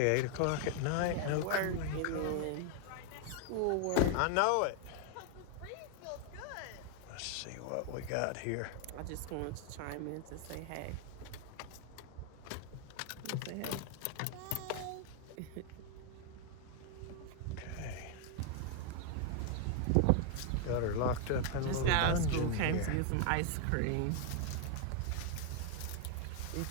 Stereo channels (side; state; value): both; different; correlation 0.01